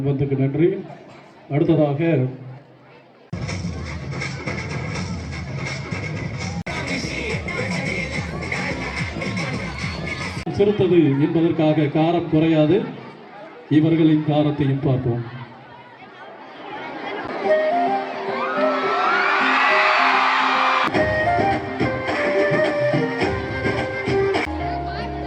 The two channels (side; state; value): both; identical; correlation 1.00